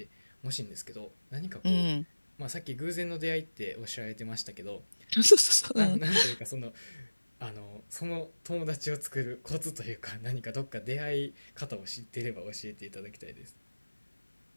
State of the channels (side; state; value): both; inverted; correlation -1.00